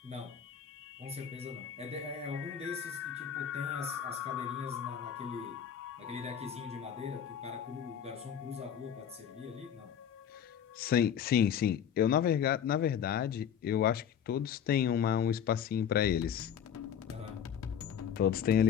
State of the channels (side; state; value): right; quieter; 8.6 dB